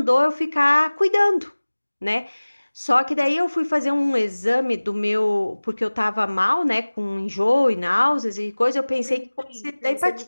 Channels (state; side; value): inverted; both; correlation -1.00